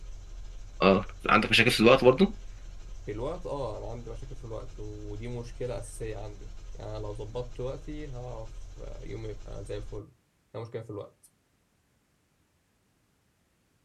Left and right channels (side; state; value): both; identical; correlation 1.00